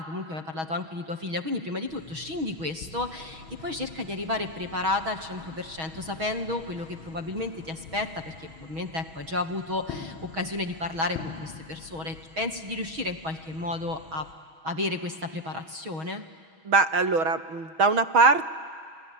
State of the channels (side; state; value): left; late; 6.3 ms